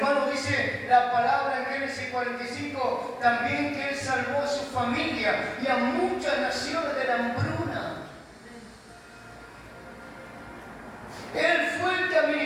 dice la palabra en Génesis 45, también que Él salvó a su familia y a muchas naciones de la hambruna. Él fue el que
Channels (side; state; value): both; identical; correlation 1.00